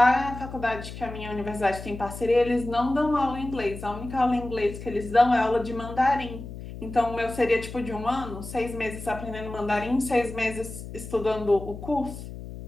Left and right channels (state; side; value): noise; left; hum, 11 dB below the sound